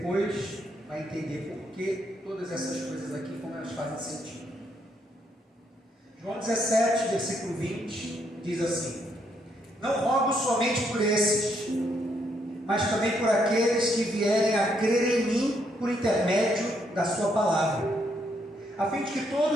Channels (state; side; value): normal; both; correlation 0.74